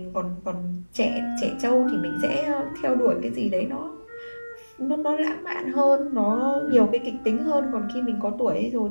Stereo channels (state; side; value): inverted; both; correlation -1.00